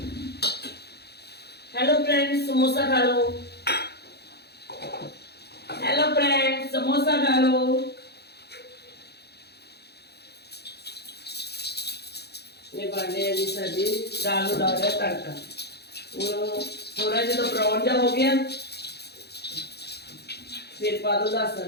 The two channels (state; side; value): late; right; 0.48 ms